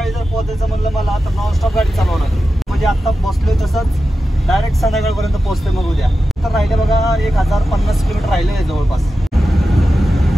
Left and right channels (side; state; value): both; normal; correlation 0.92